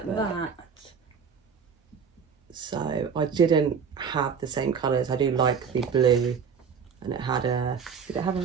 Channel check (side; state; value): left; quieter; 6.5 dB